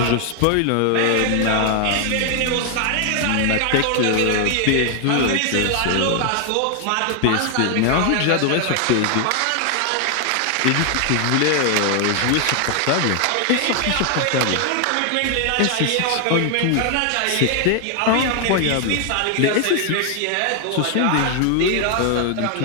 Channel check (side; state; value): both; different; correlation 0.00